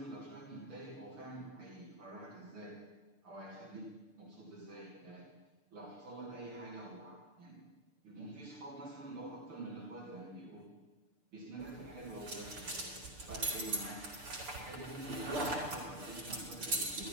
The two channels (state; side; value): late; left; 6.7 ms